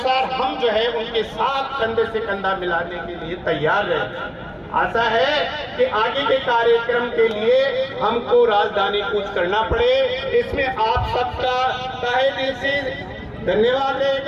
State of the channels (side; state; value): both; identical; correlation 1.00